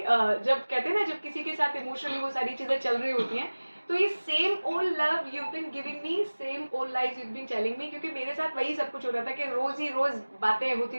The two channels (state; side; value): inverted; both; correlation -1.00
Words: कहते हैं ना जब किसी के साथ इमोशनली वो सारी चीजें चल रही होती हैं तो ये same old love you been giving me, same old lies you been telling me, क्योंकि मेरे साथ वही सब कुछ हो रहा था कि रोज ही रोज बातें होती